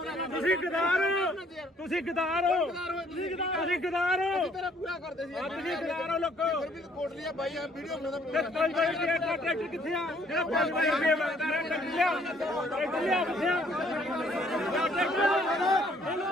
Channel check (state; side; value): normal; both; correlation 0.63